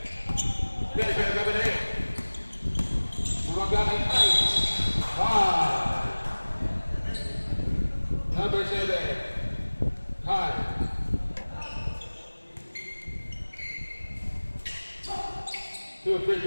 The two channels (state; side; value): inverted; both; correlation -1.00